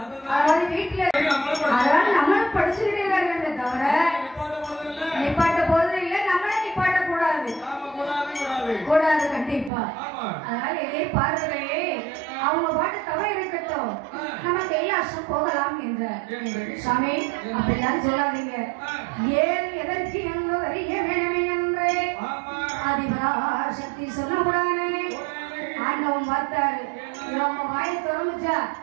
அதாவது வீட்டுல அதனால நம்மளும் படிச்சுக்கிட்டே தான் இருக்க தவிர நிப்பாட்ட போறது இல்ல, நம்மள நிப்பாட்ட கூடாது கூடாது கண்டிப்பா. அதனால இதே பார்வையே அவங்க பாட்டு தவறு இருக்கட்டும், நம்ம கைலாசம் போகலாம் என்ற சாமி அப்படிலாம் சொல்லாதீங்க. ஏன் எதற்கு என்று அறிய வேணுமே என்று ஆதிபராசக்தி சொல்லக்கூடாது. ஆண்டவன் பார்த்தாரு, நம்ம வாயை திறந்துச்சா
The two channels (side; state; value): left; drops out; at 9.7 s